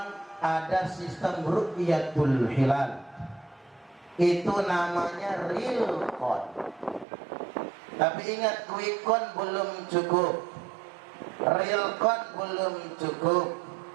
ada sistem ru'yatul hilal, itu namanya real count. Tapi ingat, quick count belum cukup, real count belum cukup.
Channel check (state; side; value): drops out; left; at 7.1 s